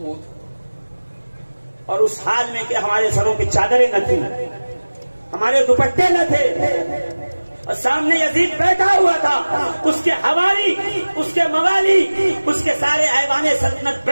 اور اس حال میں کہ ہمارے سروں پہ چادریں نہ تھیں، ہمارے دوپٹے نہ تھے، اور سامنے یزید بیٹھا ہوا تھا، اس کے حوالی، اس کے موالی، اس کے سارے ایوان سلطنت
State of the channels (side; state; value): both; inverted; correlation -1.00